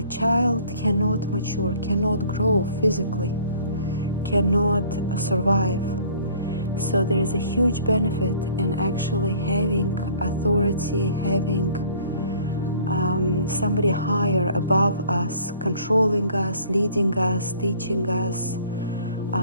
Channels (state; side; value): inverted; both; correlation -0.53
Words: child cannot mature, cannot grow physically, cannot survive. So there is a huge benefit in actually having authority, having somebody higher above us, controlling us, leading us, teaching us,